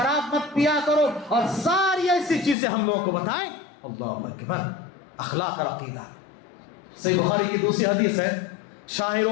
مت پیا کرو، اور ساری ایسی چیزیں ہم لوگوں کو بتائیں۔ اللہ اکبر، اخلاق اور عقیدہ۔ صحیح بخاری کی دوسری حدیث ہے، شاعر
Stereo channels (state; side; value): drops out; right; at 2.6 s